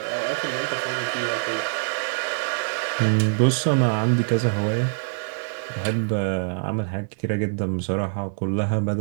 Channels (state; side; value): silent; left; 62 dB below the other